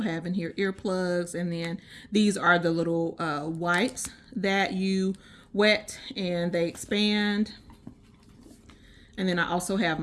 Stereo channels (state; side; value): identical; both; correlation 1.00